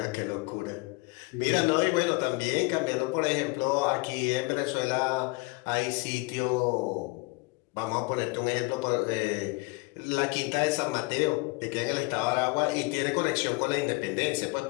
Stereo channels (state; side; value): quieter; right; 26.0 dB